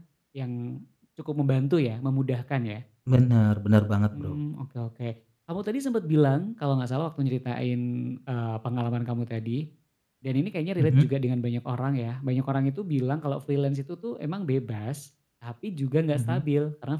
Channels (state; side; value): identical; both; correlation 1.00